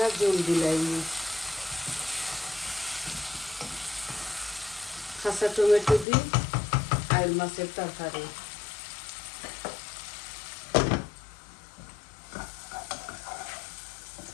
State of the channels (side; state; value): right; drops out; at 6.1 s